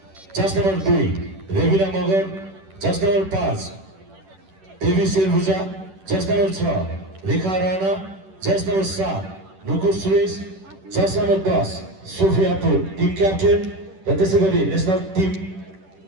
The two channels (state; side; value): late; left; 10 ms